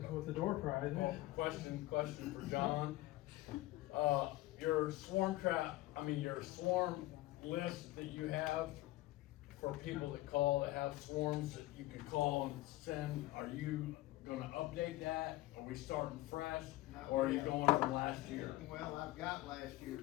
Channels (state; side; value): quieter; right; 17.7 dB